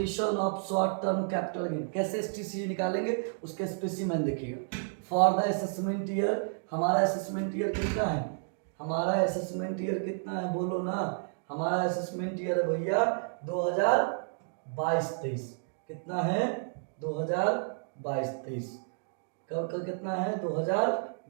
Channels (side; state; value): left; silent; digital silence